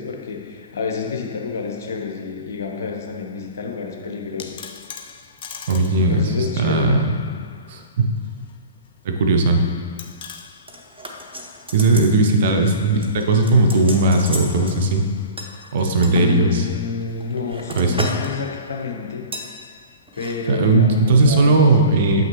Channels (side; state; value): both; inverted; correlation -0.40